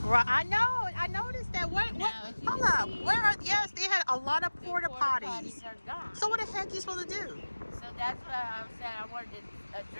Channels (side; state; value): both; inverted; correlation -1.00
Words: Right. I know. I noticed that. What? Hold up. Where are? Yes, they had a lot of porta potties. Are gone. So what the heck are you supposed to do? So that's what I said. I wanted to